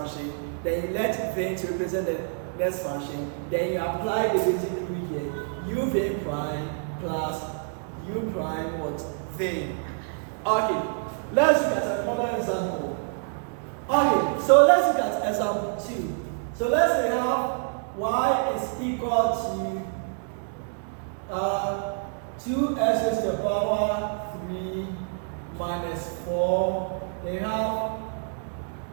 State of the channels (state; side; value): silent; left; digital silence